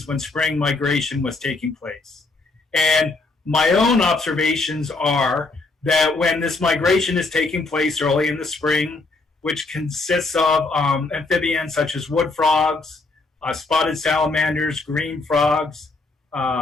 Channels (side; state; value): right; quieter; 3.5 dB